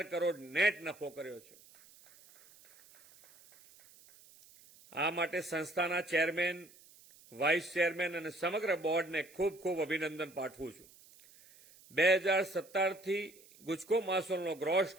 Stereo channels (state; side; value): noise; right; hiss, 24 dB below the sound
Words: કરોડ નેટ નફો કર્યો છે. આ માટે સંસ્થાના ચેરમેન, વાઇસ ચેરમેન અને સમગ્ર બોર્ડને ખૂબ ખૂબ અભિનંદન પાઠવું છું. 2017થી ગુજકો માસોલનો ગ્રોસ